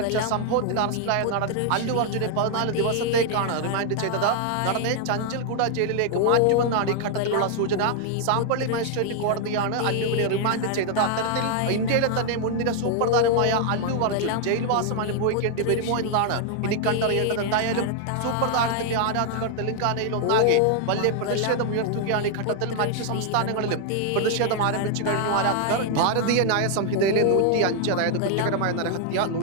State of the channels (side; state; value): both; different; correlation 0.00